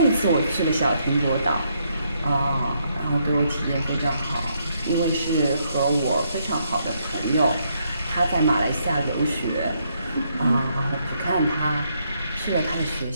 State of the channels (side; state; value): both; inverted; correlation -0.75